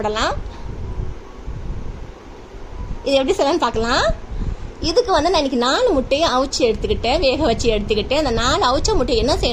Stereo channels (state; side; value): identical; both; correlation 1.00